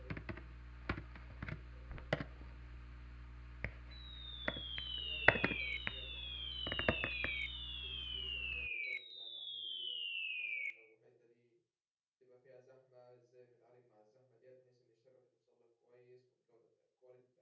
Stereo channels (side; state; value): both; identical; correlation 1.00